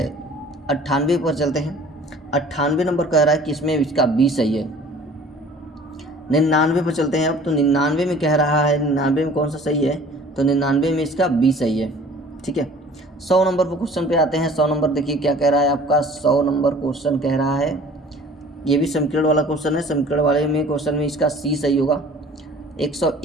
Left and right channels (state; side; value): normal; both; correlation 0.49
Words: 98 पर चलते हैं। 98 नंबर कह रहा है कि इसमें इसका बी सही है। 99 पर चलते हैं अब, तो 99 में कह रहा है 99 में कौन सा सही है, तो 99 में इसका बी सही है, ठीक है। 100 नंबर पर क्वेश्चन पे आते हैं। 100 नंबर देखिए क्या कह रहा है आपका। 100 नंबर क्वेश्चन कह रहा है, ये भी समीकरण वाला क्वेश्चन है। समीकरण वाले में क्वेश्चन में इसका सी सही होगा।